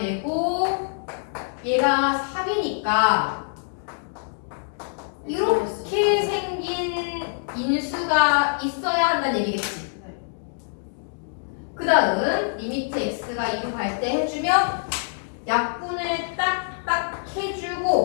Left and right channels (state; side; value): silent; right; digital silence